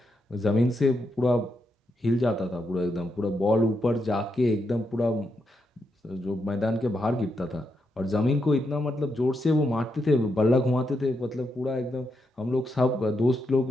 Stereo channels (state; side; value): normal; both; correlation 0.83